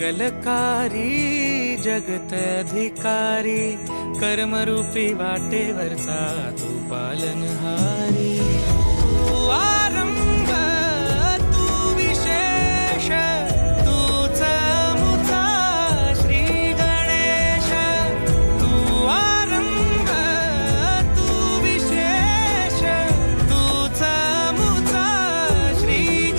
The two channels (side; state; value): both; inverted; correlation -1.00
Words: जगत अधिकारी, कर्मरूपी वाटेवरचा तू पालनहारी। तू आरंभ तू विशेष, तूच मुचा श्री गणेश। तू आरंभ तू विशेष, तूच मुचा श्री